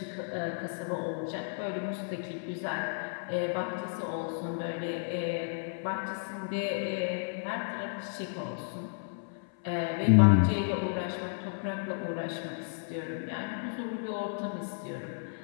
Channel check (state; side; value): silent; right; 56 dB below the other